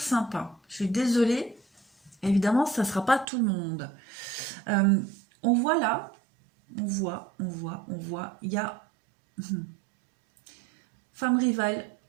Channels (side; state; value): left; drops out; at 3.2 s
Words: Je suis désolée, évidemment, ça ne sera pas tout le monde. Euh, on voit là, on voit, il y a femme rivale,